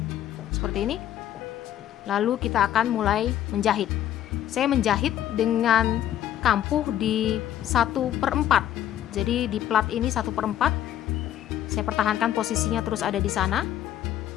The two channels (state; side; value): quieter; right; 11.6 dB